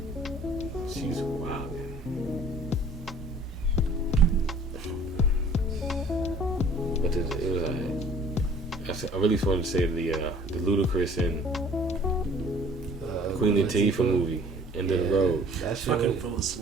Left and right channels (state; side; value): normal; both; correlation 0.53